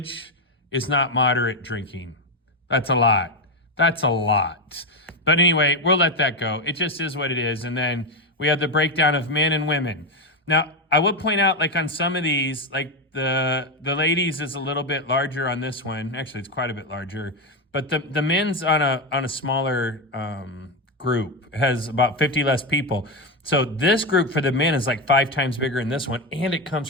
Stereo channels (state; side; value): normal; both; correlation 0.10